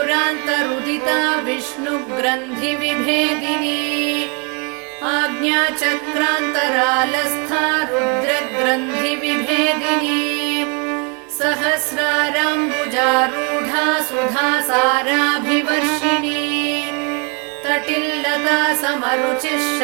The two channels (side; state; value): left; quieter; 35.2 dB